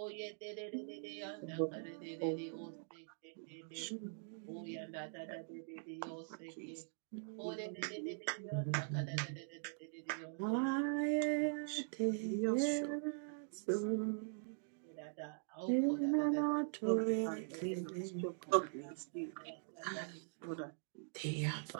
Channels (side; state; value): left; silent; digital silence